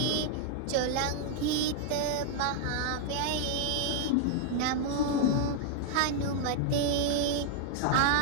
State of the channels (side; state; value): both; different; correlation 0.00